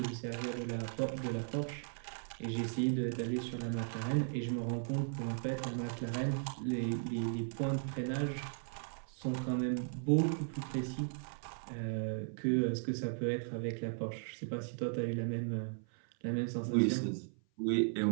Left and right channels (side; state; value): left; silent; 53 dB below the other